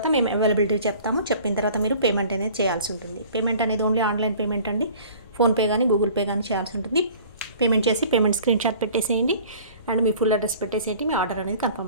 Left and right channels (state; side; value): inverted; both; correlation -0.48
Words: మేము అవైలబిలిటీ చెప్తాము. చెప్పిన తర్వాత మీరు పేమెంట్ అనేది చేయాల్సి ఉంటుంది. పేమెంట్ అనేది ఓన్లీ ఆన్లైన్ పేమెంట్ అండి. ఫోన్పే కానీ గూగుల్ పే కానీ చేయాల్సి ఉంటుంది. పేమెంట్ చేసి పేమెంట్ స్క్రీన్ షాట్ పెట్టేసేయండి అండ్ మీ ఫుల్ అడ్రస్ పెట్టేసేయండి. మీ ఆర్డర్ అనేది